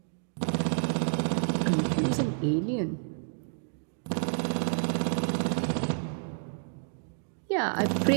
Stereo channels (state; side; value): silent; left; digital silence